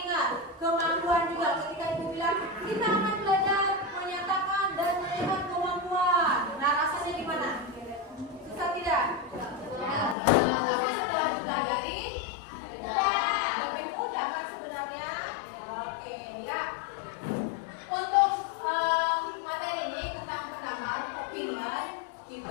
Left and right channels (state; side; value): drops out; right; at 10.2 s